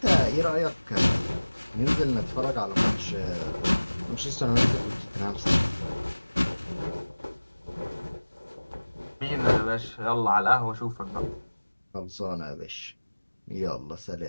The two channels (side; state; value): both; inverted; correlation -1.00